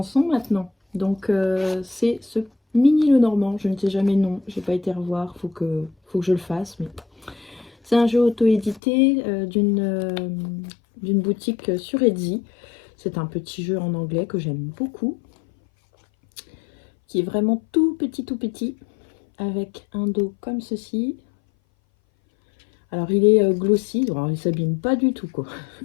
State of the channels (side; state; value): right; drops out; at 8.8 s